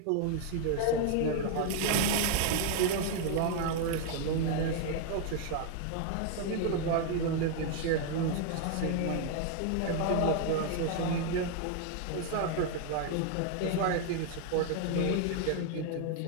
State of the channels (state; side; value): different; both; correlation 0.00